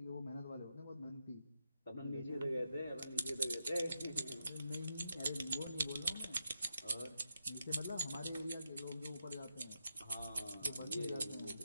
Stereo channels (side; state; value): both; inverted; correlation -0.83